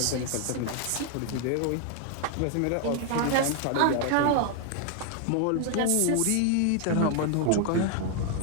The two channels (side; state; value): both; different; correlation 0.00